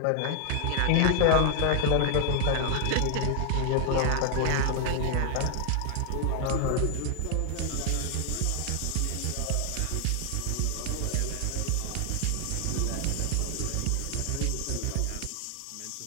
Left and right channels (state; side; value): different; both; correlation 0.00